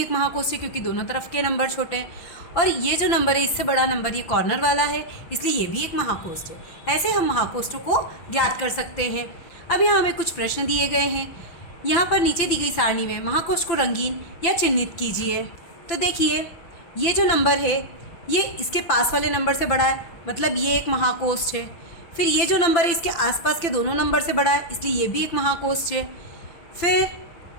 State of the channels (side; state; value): right; late; 5.9 ms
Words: महाकोष्ठ है क्योंकि दोनों तरफ के नंबर छोटे हैं। और ये जो नंबर है इससे बड़ा नंबर ये कॉर्नर वाला है, इसलिए ये भी एक महाकोष्ठ है। ऐसे हम महाकोष्ठों को ज्ञात कर सकते हैं। अब यहाँ हमें कुछ प्रश्न दिए गए हैं। यहाँ पर नीचे दी गई सारणी में महाकोष्ठ को रंगीन या चिन्हित कीजिए। तो देखिए ये जो नंबर है ये इसके पास वाले नंबर से बड़ा है, मतलब ये एक महाकोष्ठ है। फिर ये जो नंबर है इसके आसपास के दोनों नंबर से बड़ा है, इसलिए ये भी एक महाकोष्ठ है। फिर